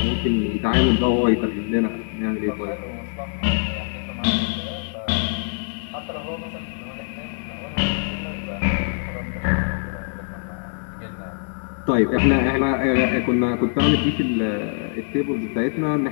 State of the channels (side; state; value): right; silent; 56 dB below the other